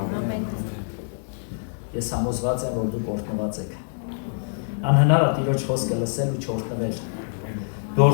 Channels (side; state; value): right; silent; digital silence